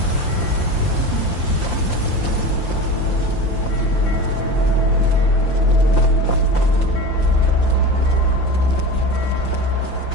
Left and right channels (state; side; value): late; right; 5.8 ms